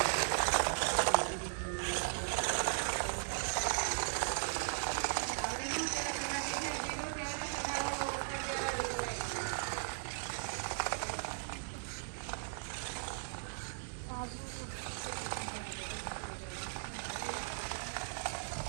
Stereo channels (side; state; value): left; silent; digital silence